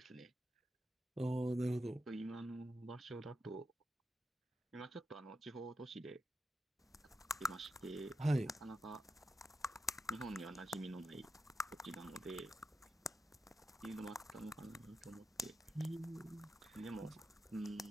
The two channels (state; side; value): normal; both; correlation 0.88